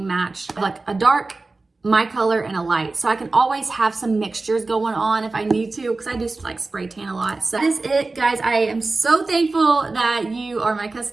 match. Like a dark, my color, and a light. So I can always have some mixtures going on if I need to, because I do like spray tan a lot. So that is it, guys. I am so thankful that you are my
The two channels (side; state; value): left; quieter; 3.5 dB